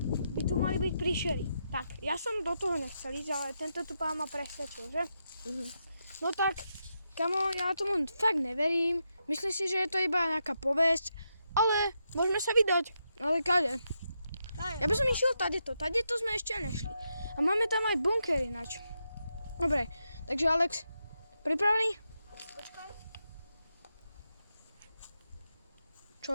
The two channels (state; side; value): inverted; both; correlation -0.84